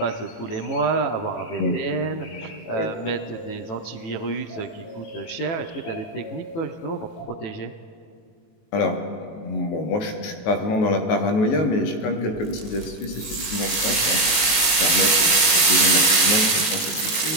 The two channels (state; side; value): late; right; 18 ms